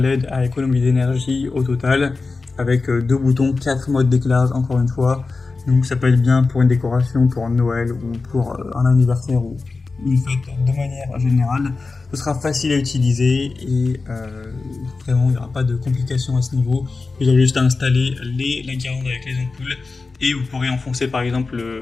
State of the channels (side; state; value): right; quieter; 4.0 dB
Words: à économie d'énergie au total, avec 2 boutons, 4 modes d'éclairage encore une fois, donc ça peut être bien pour une décoration, pour Noël ou pour un anniversaire ou une fête de manière générale. Ce sera facile à utiliser et vraiment il n'y aura pas de complications à ce niveau. Vous aurez juste à installer la guirlande avec les ampoules et vous pourrez enfoncer par exemple